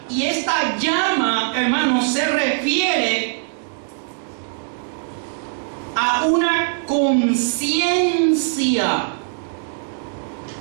Y esta llama, hermanos, se refiere a una conciencia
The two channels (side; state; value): left; silent; 65 dB below the other